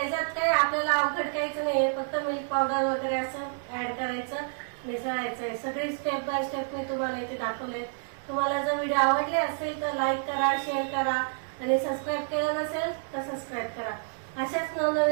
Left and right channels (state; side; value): silent; left; 59 dB below the other